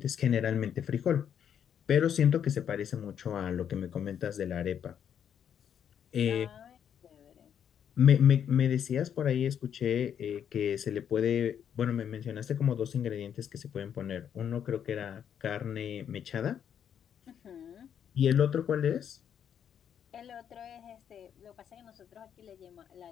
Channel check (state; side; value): quieter; right; 8.7 dB